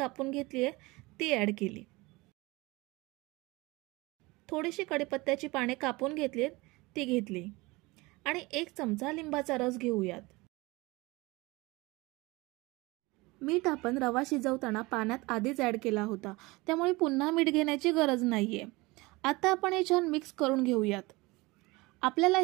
घेतली आहे, ती ॲड केली. थोडीशी कढीपत्त्याची पाने कापून घेतलीत, ती घेतली. आणि 1 चमचा लिंबाचा रस घेऊयात. मीठ आपण रवा शिजवताना पाण्यात आधीच ॲड केला होता, त्यामुळे पुन्हा मीठ घेण्याची गरज नाहीये. आता आपण हे छान मिक्स करून घेऊयात. आपल्याला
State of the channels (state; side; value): quieter; left; 22.9 dB